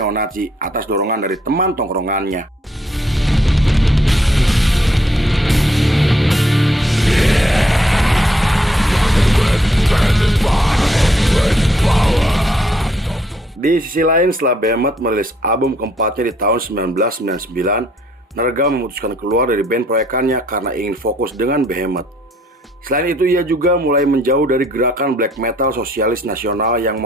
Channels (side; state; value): both; normal; correlation 0.68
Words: atas dorongan dari teman tongkrongannya. Di sisi lain, setelah Behemoth merilis album keempatnya di tahun 1999, Nergal memutuskan keluar dari band proyekannya karena ingin fokus dengan Behemoth. Selain itu, ia juga mulai menjauh dari gerakan black metal sosialis nasional yang